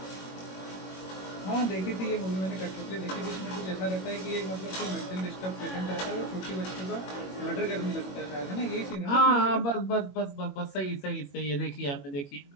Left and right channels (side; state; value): right; late; 21 ms